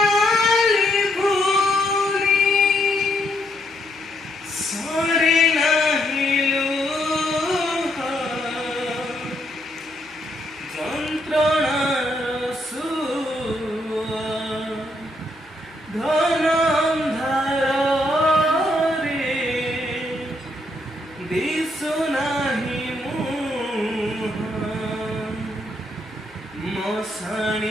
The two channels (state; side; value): noise; right; hum, 30 dB below the sound